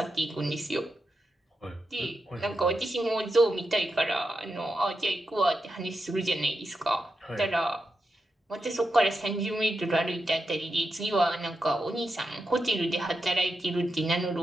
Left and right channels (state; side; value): normal; both; correlation 0.88